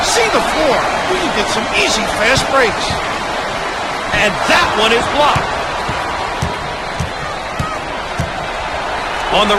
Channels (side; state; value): both; identical; correlation 1.00